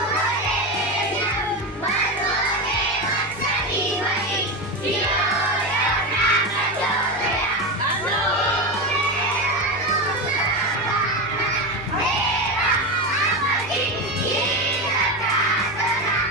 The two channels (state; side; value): normal; both; correlation 0.18